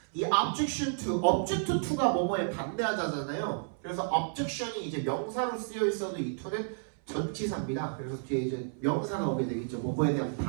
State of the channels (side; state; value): left; silent; 57 dB below the other